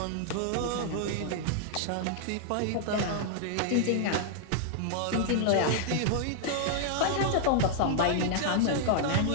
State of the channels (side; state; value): both; different; correlation -0.01